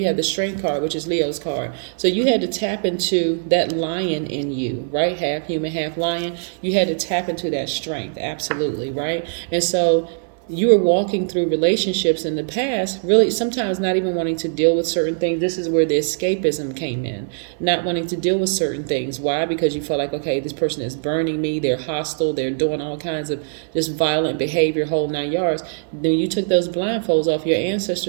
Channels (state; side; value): silent; left; 58 dB below the other